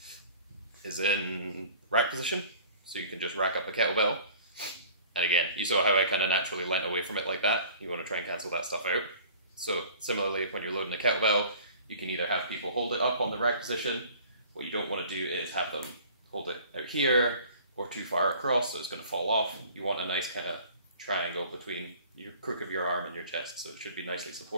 is in rack position. So you can just rack up a kettlebell. And again, you saw how I kind of naturally leant away from it like that. You want to try and cancel that stuff out. So similarly, when you're loading a kettlebell, you can either have people hold it up on the rack position. What you don't want to do is have them hold it out here, or too far across, so it's going to fall off. You want a nice kind of triangle between your crook of your arm and your chest, so it should be nicely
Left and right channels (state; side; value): inverted; both; correlation -0.48